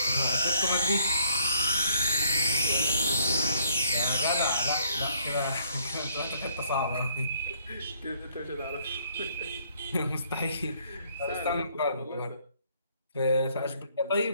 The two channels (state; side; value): inverted; both; correlation -0.66